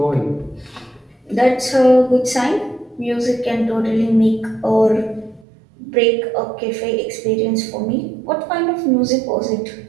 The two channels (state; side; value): drops out; left; at 5.5 s